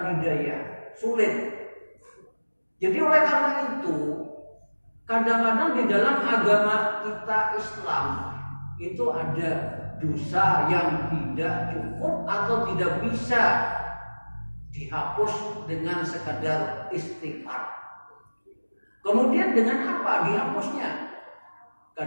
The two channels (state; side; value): inverted; both; correlation -1.00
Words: hidayah, sulit. Jadi oleh karena itu, kadang-kadang di dalam agama kita Islam itu ada dosa yang tidak cukup atau tidak bisa dihapus dengan sekadar istighfar. Kemudian dengan apa dihapusnya?